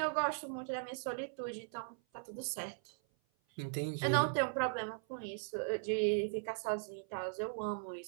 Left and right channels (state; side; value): silent; left; 52 dB below the other